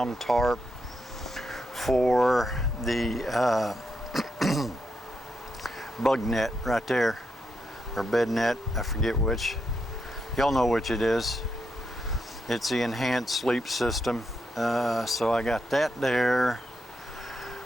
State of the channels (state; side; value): normal; both; correlation 0.82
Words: tarp for the bug net right there, or bed net, I forget which. Y'all know which it is. It's the enhanced sleep system. So I got that there.